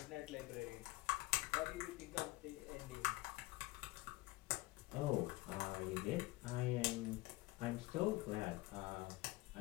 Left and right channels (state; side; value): quieter; right; 20.3 dB